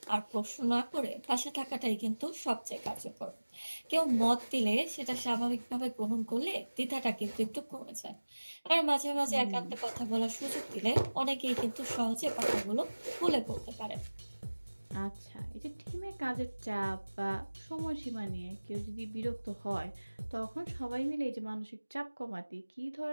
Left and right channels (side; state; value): both; inverted; correlation -1.00